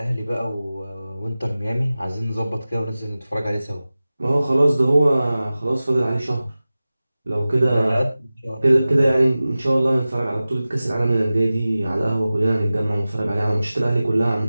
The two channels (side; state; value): both; inverted; correlation -0.96